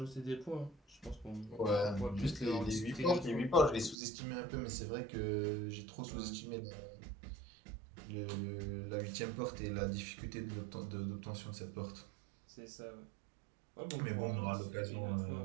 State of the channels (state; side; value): drops out; left; at 4.0 s